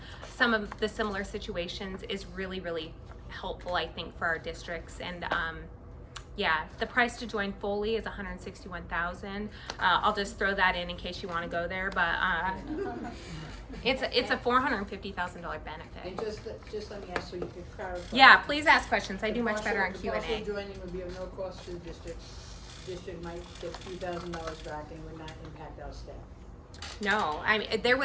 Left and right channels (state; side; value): identical; both; correlation 1.00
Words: of the similar situations is really, really helpful, I think, for our districts. And yeah, the price to join fully is $161,000. I'll just throw that in case you want to go there, but it's a $450,000 benefit. And just let me ask so you can clarify. Yeah, please ask questions. I do much better on The Q&A. partial joining would be of no cost to the district. District might get a few $1,000s back and would not impact our staff. No, I mean